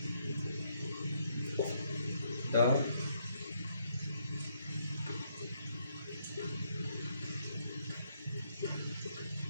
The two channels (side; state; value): both; inverted; correlation -0.73